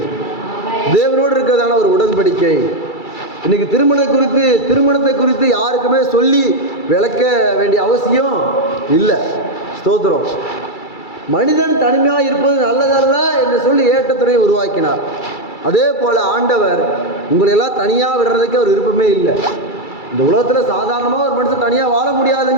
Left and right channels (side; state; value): right; late; 2.3 ms